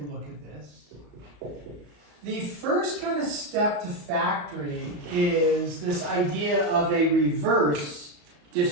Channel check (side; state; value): left; late; 34 ms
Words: look at this. The first kind of step to factoring is this idea of a reverse